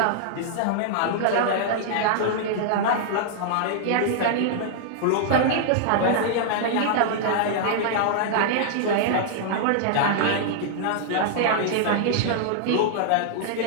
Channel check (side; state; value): both; different; correlation -0.01